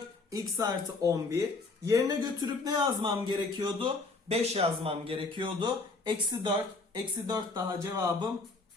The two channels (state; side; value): quieter; right; 3.7 dB